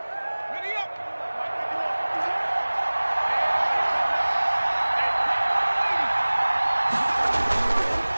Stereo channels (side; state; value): both; inverted; correlation -1.00